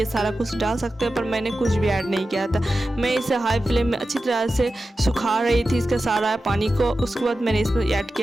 सारा कुछ डाल सकते हैं, पर मैंने कुछ भी ऐड नहीं किया था। मैं इसे हाई फ्लेम में अच्छी तरह से सुखा रही थी इसका सारा पानी को। उसके बाद मैंने इसमें ऐड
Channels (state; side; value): normal; both; correlation 0.93